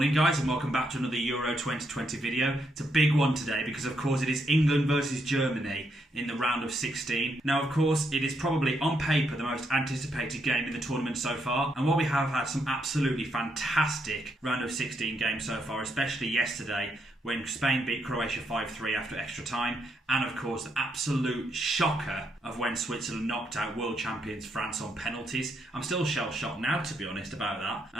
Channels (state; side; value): normal; both; correlation 0.78